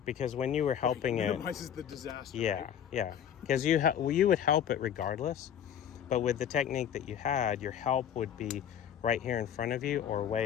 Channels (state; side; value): quieter; right; 9.2 dB